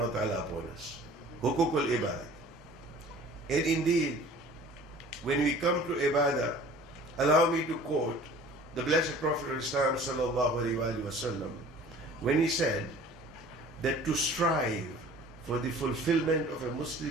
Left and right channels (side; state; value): both; normal; correlation 0.47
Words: wa ta'ala upon us, hukukul ibad. And indeed, when we come to ibadah, allow me to quote the Blessed Prophet of Islam sallallahu alaihi wasallam, when he said that to strive for the fulfillment of a